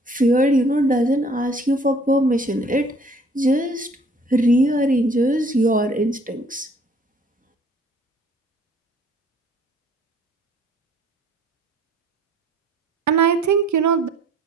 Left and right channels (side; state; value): both; normal; correlation 0.57